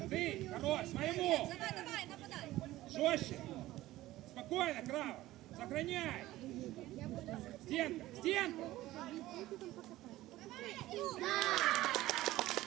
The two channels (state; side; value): quieter; left; 16.3 dB